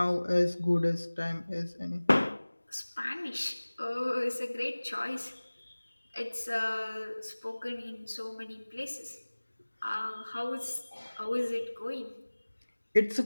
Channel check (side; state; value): both; inverted; correlation -1.00